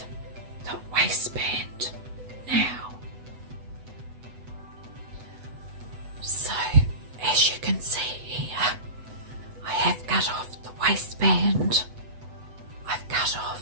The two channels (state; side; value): late; left; 8.1 ms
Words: the waistband now. So as you can see here, I have cut off the waistband, I've cut